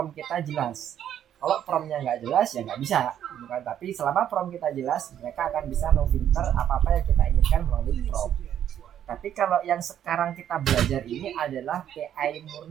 kita jelas. Kalau promptnya nggak jelas ya nggak bisa, bukan. Tapi selama prompt kita jelas, mereka akan bisa memfilter apa-apa yang kita inginkan melalui prompt. Tapi kalau yang sekarang kita belajar ini adalah AI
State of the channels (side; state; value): left; quieter; 10.2 dB